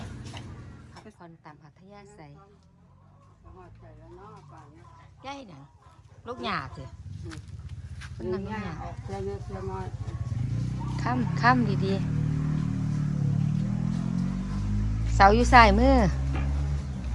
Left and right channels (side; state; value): both; identical; correlation 1.00